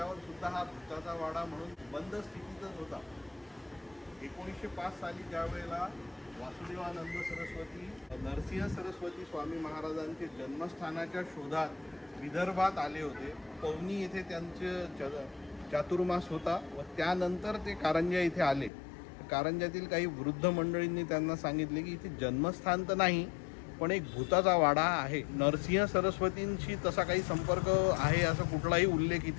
सुद्धा हा भूताचा वाडा म्हणून बंद स्थितीतच होता। 1905 साली ज्यावेळेला वासुदेवानंद सरस्वती नरसिंह सरस्वती स्वामी महाराजांचे जन्मस्थानाच्या शोधात विदर्भात आले होते। पवनी येथे त्यांचे चातुर्मास होता व त्यानंतर ते कारंजा इथे आले। कारंजातील काही वृद्ध मंडळींनी त्यांना सांगितले की इथे जन्मस्थान तर नाही पण एक भूताचा वाडा आहे। नरसिंह सरस्वतींशी तसा काही संपर्क आहे असा कुठलाही उल्लेख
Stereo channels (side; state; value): right; drops out; at 18.7 s